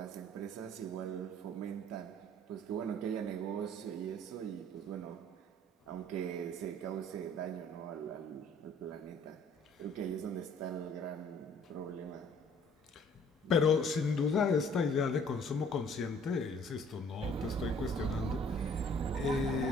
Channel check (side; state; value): both; normal; correlation 0.57